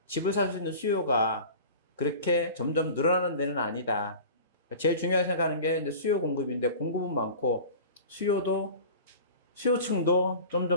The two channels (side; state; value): both; inverted; correlation -0.38